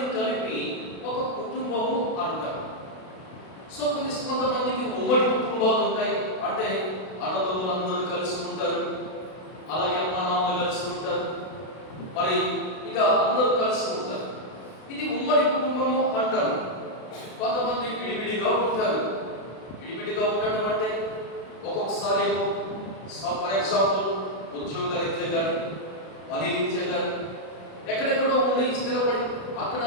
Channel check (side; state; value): right; late; 32 ms